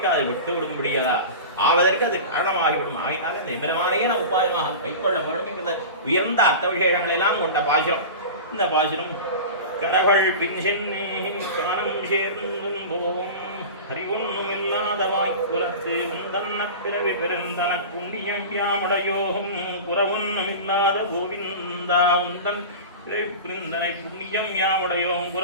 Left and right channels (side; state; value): both; inverted; correlation -0.31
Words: விட்டு விடும்படியதா ஆவதற்கு அது காரணமாகிவிடும். ஆகினால இந்த எம்பெருமானையே நான் உபாயமாக கைக்கொள்ள வேண்டும் என்கிற உயர்ந்த அர்த்த விசேஷங்களை எல்லாம் கொண்ட பாசுரம் இந்த பாசுரம். கரகள் பின் சென்னே கானம் சேர்ந்தும் போகும் அறிவொன்னும் இல்லாத வாய்ப்புலத்து உந்தன்ன பிறவி பெருந்தன புண்ணியம் யாமுடையோகும் புறவொன்னும் இல்லாத கோவிந்தா உந்தன் பிறவி புரிந்தனை புண்ணியம் யாமுடையோம்